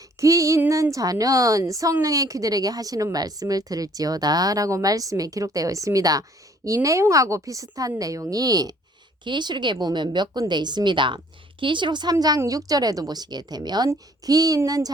귀 있는 자는 성령의 귀들에게 하시는 말씀을 들을지어다 라고 말씀에 기록되어 있습니다. 이 내용하고 비슷한 내용이 계시록에 보면 몇 군데 있습니다. 계시록 3장 6절에도 보시게 되면 귀 있는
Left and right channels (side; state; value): both; normal; correlation 0.59